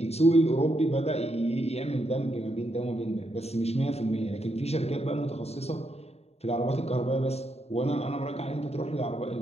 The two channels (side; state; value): right; late; 0.30 ms